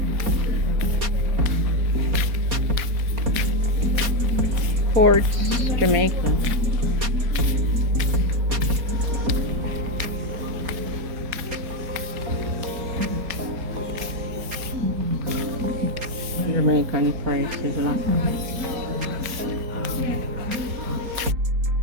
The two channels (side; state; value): left; late; 4.2 ms